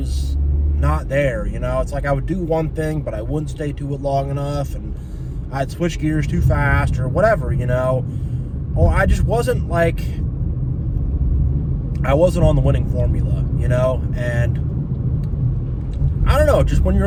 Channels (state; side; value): identical; both; correlation 1.00